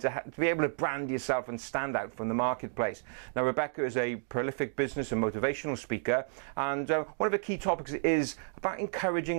be able to brand yourself and stand out from the marketplace. Now, Rebecca is a prolific business and motivational speaker, and one of the key topics is about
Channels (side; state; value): left; silent; digital silence